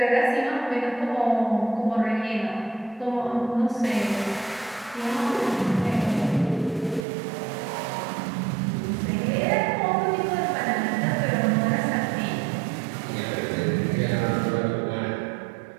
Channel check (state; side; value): drops out; left; at 7.1 s